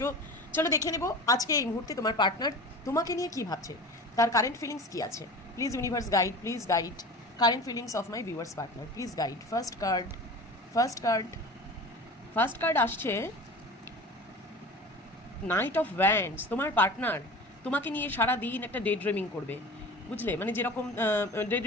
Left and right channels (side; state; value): both; normal; correlation 0.35